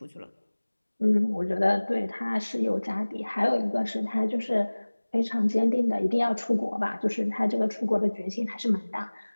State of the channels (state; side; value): inverted; both; correlation -1.00